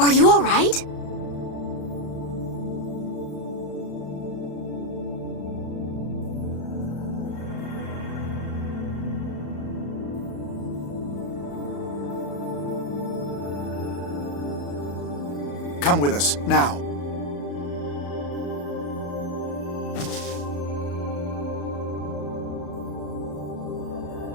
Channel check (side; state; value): right; late; 35 ms